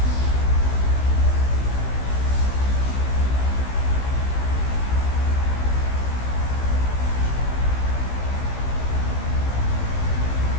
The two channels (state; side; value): late; right; 16 ms